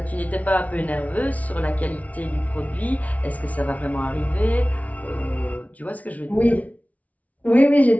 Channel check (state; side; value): late; right; 0.070 ms